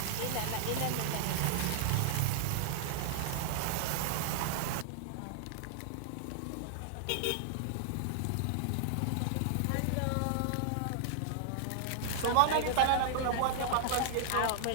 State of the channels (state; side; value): different; both; correlation -0.01